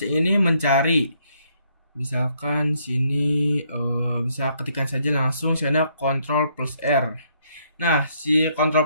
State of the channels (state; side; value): inverted; both; correlation -0.70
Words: ini mencari, misalkan sini bisa ketikkan saja langsung sana Ctrl plus R. Nah, si